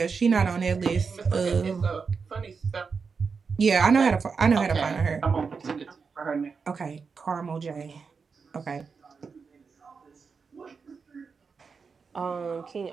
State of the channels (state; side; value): quieter; left; 5.3 dB